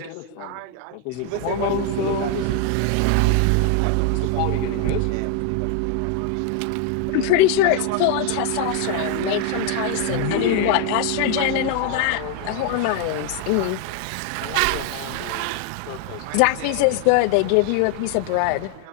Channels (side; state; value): both; different; correlation 0.00